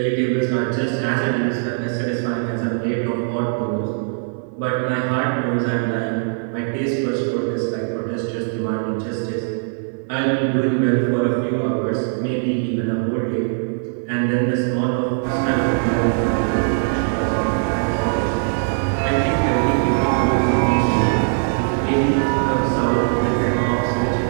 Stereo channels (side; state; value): left; silent; digital silence